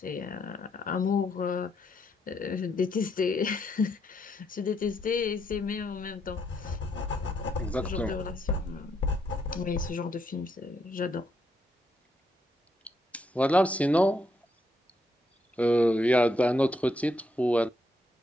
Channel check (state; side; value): normal; both; correlation 0.76